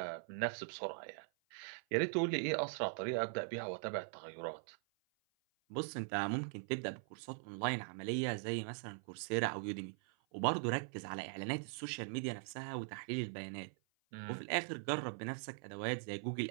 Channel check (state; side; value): silent; left; 50 dB below the other